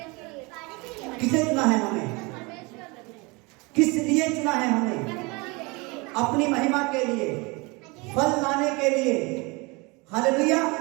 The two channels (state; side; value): quieter; left; 27.0 dB